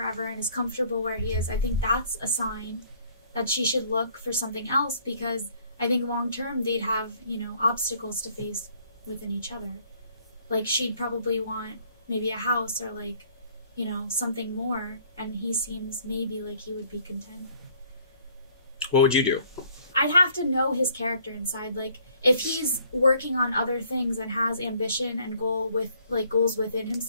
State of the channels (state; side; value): inverted; both; correlation -0.61